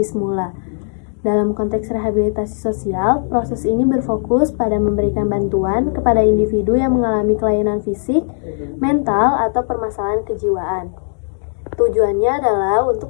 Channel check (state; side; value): silent; right; digital silence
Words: semula. Dalam konteks rehabilitasi sosial, proses ini berfokus pada memberikan bantuan kepada individu yang mengalami kelainan fisik, mental, atau permasalahan kejiwaan. Tujuannya adalah untuk